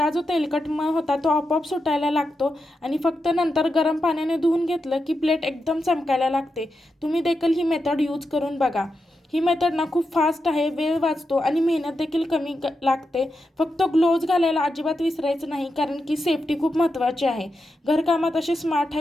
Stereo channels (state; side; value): normal; both; correlation 0.87